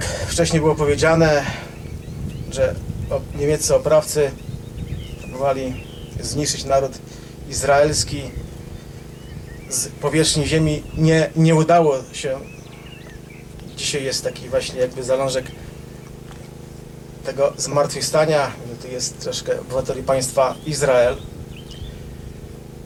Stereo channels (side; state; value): both; identical; correlation 1.00